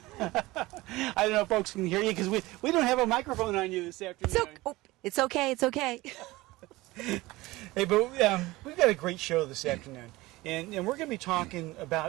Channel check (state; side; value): quieter; left; 19.8 dB